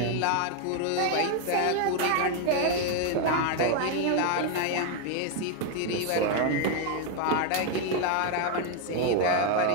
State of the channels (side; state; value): both; different; correlation 0.01